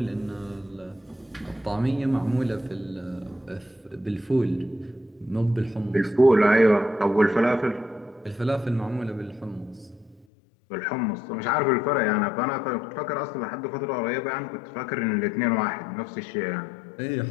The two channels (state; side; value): drops out; right; at 10.2 s